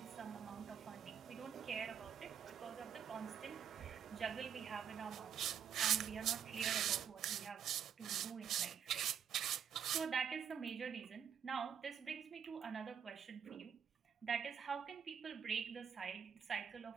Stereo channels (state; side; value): quieter; left; 8.2 dB